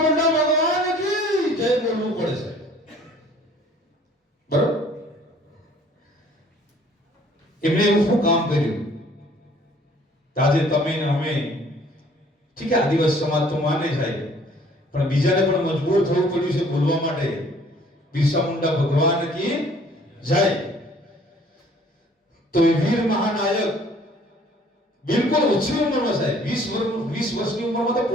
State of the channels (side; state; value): both; normal; correlation 0.56